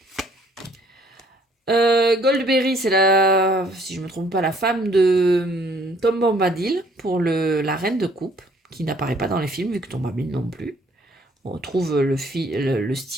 Goldberry, c'est si je me trompe pas, la femme de Tom Bombadil pour la reine de coupe, qui n'apparaît pas dans les films, vu que Tom Bombadil non plus. On retrouve le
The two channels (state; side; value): normal; both; correlation 0.61